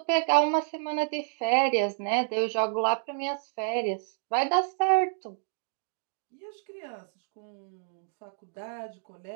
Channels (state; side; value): silent; left; digital silence